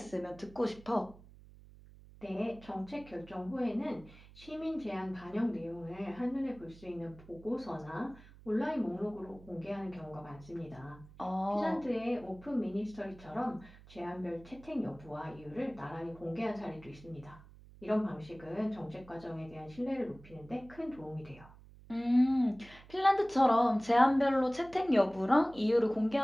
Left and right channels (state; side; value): noise; right; hum, 21 dB below the sound